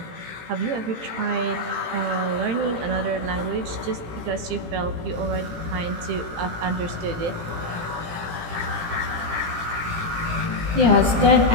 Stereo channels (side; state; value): left; late; 18 ms